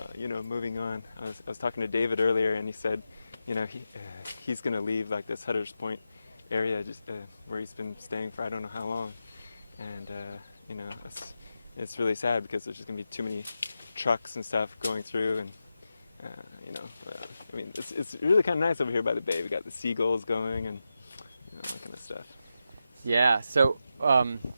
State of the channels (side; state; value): both; inverted; correlation -0.89